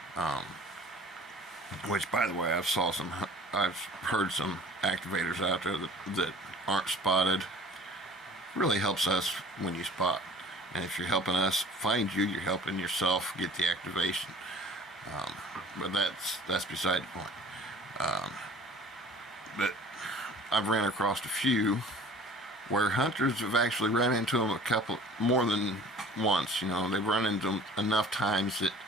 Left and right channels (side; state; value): both; normal; correlation 0.47